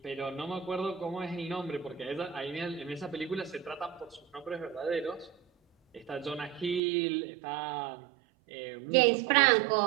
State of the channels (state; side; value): drops out; left; at 6.8 s